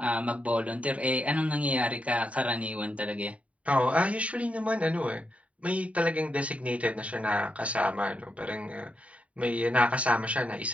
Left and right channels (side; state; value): left; late; 0.066 ms